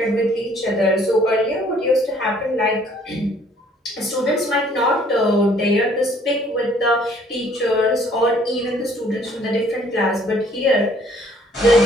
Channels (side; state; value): both; normal; correlation 0.60